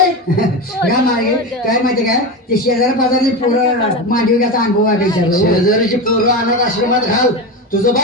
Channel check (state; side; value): normal; both; correlation 0.20